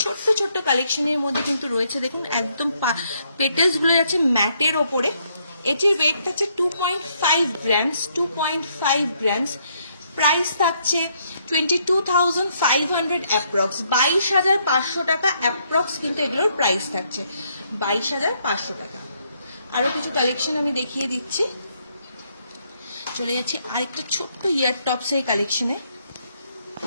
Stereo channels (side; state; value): both; inverted; correlation -0.72